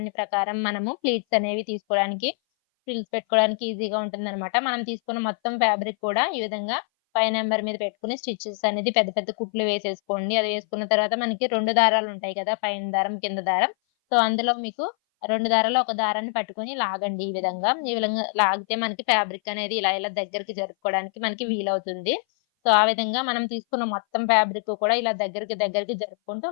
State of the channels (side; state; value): right; silent; 58 dB below the other